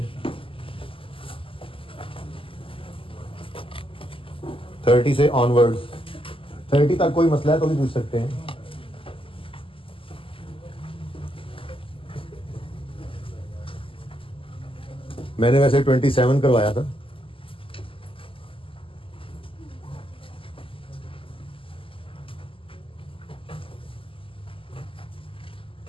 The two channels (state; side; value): late; right; 0.26 ms